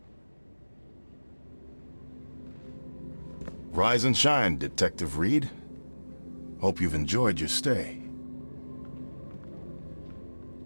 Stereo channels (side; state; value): both; inverted; correlation -1.00